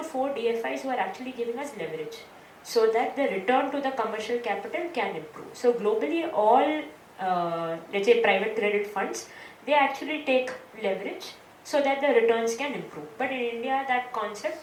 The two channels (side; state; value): both; identical; correlation 1.00